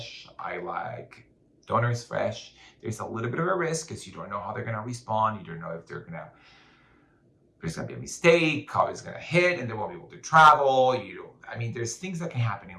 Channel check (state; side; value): identical; both; correlation 1.00